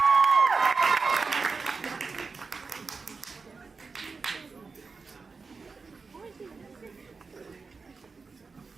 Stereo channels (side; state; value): left; quieter; 4.5 dB